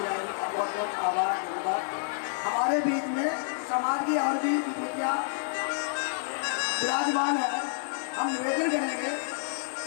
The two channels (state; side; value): silent; right; 59 dB below the other